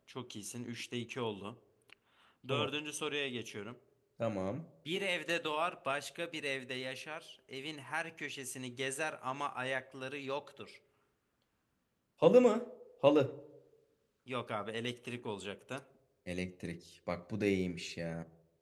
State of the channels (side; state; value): both; identical; correlation 1.00